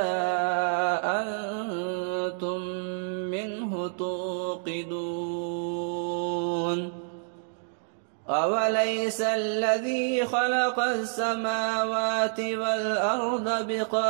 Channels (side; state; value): left; silent; digital silence